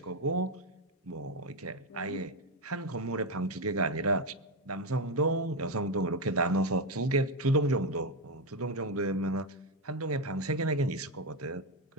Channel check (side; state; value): both; normal; correlation 0.08